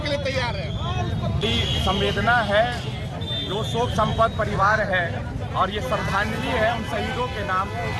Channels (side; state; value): both; identical; correlation 1.00